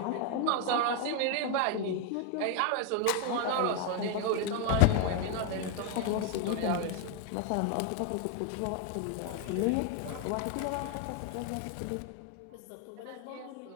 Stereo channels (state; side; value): different; both; correlation 0.01